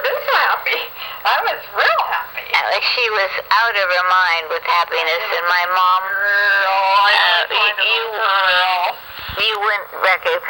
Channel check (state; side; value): identical; both; correlation 1.00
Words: so happy. I was real happy. She was out of her mind with happiness, and my mom. You wouldn't